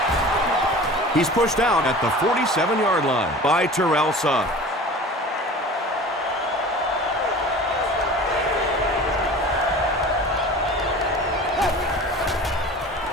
He's pushed out at the 47-yard line by Terrell Sugg.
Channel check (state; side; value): normal; both; correlation 0.39